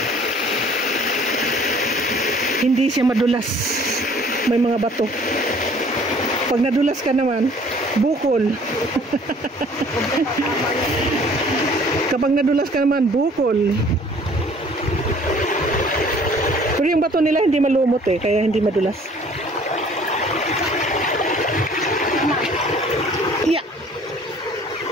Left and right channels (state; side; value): normal; both; correlation 0.54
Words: Hindi siya madulas. May mga bato. Pag nadulas ka naman, bukol. Kapag nadulas ka naman, bukol. Pero yung bato nila hindi malumot eh, kaya hindi madulas. Yeah.